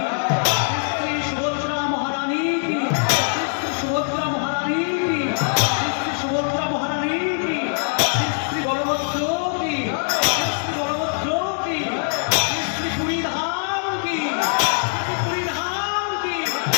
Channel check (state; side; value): silent; right; digital silence